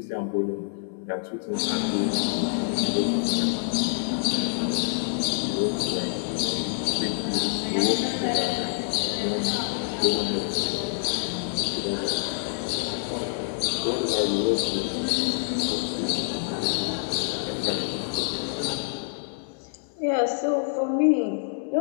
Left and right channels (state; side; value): silent; right; digital silence